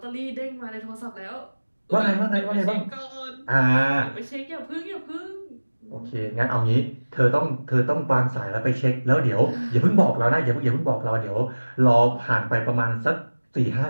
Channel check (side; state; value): both; inverted; correlation -1.00